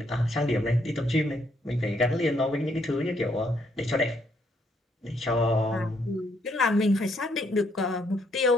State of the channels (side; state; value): both; normal; correlation 0.71